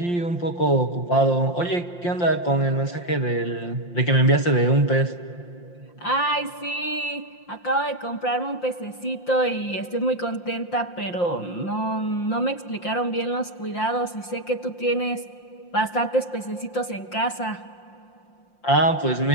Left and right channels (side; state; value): right; late; 5.7 ms